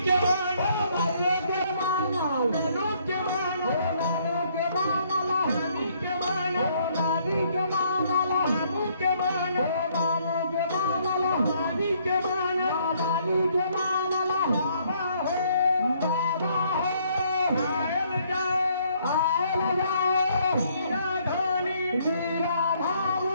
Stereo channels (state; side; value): inverted; both; correlation -0.67